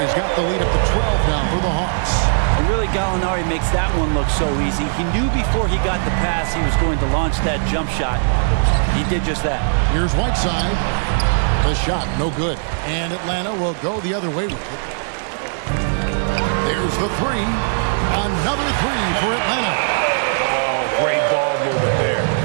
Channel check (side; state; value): left; silent; digital silence